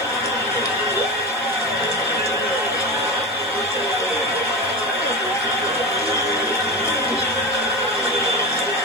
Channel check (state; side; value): noise; right; hiss, 25 dB below the sound